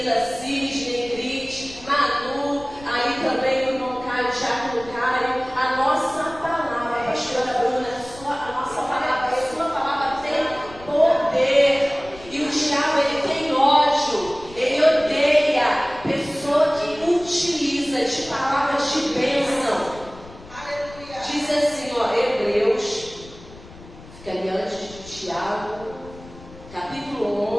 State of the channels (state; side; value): noise; left; rumble, 19 dB below the sound